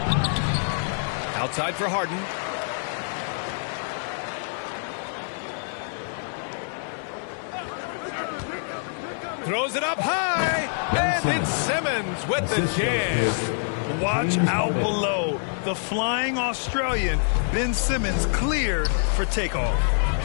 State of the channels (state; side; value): silent; right; 61 dB below the other